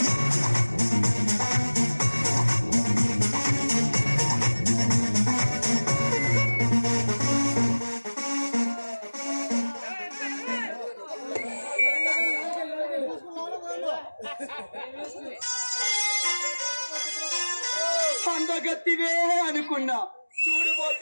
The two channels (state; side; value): inverted; both; correlation -1.00